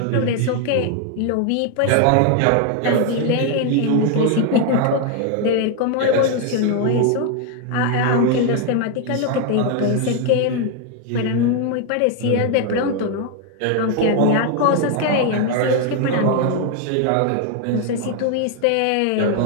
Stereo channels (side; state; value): both; different; correlation 0.01